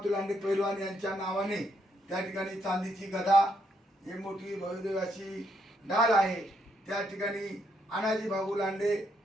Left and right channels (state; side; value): normal; both; correlation 0.75